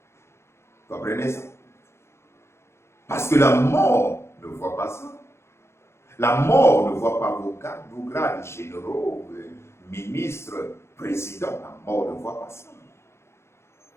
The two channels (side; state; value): right; late; 0.13 ms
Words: Vous comprenez ça? Parce que la mort ne voit pas ça. La mort ne voit pas vos grades généraux, ministres, présidents. La mort ne voit pas ça.